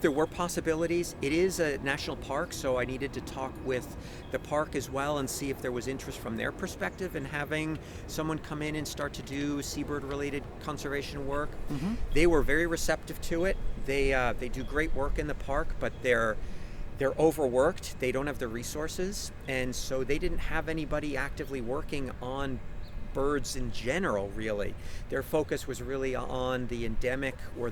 there were possibilities. It is a national park, so I needed to talk with the park as well and see if there was interest from their perspective in having someone come in and start to do seabird-related conservation work. Mm-hmm. They were very receptive to it. They do great work in the park, but they're overworked. They don't have the resources, and so they didn't have anybody actively working on birds in general, really. Their focus was really on the endemic or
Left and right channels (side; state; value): both; identical; correlation 1.00